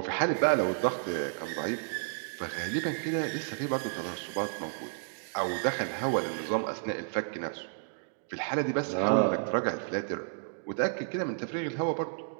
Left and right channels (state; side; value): silent; left; digital silence